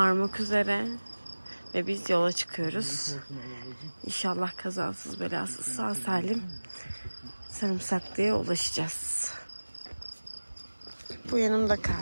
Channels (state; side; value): inverted; both; correlation -1.00